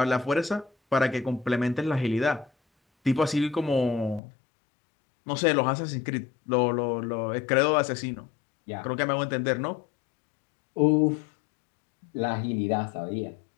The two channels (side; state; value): right; drops out; at 4.2 s